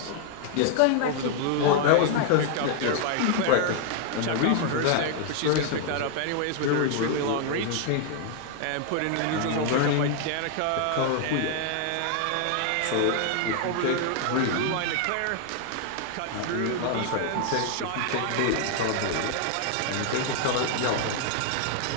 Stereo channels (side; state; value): both; different; correlation 0.00